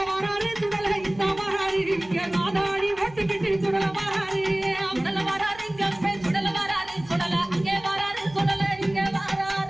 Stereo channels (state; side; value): noise; right; hum, 21 dB below the sound